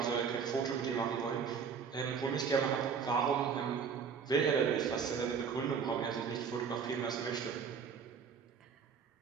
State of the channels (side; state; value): left; quieter; 6.4 dB